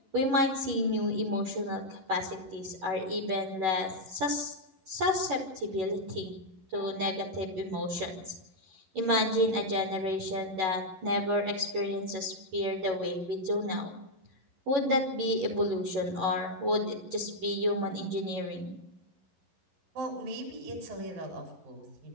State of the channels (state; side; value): late; left; 11 ms